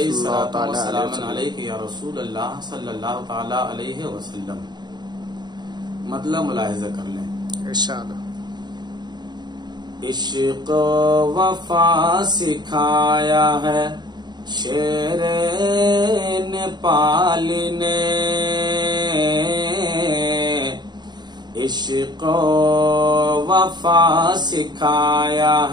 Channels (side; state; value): left; late; 0.21 ms